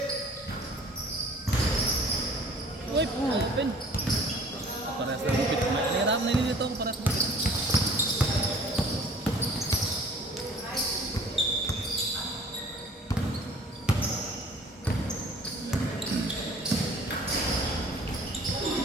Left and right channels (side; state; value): both; normal; correlation 0.50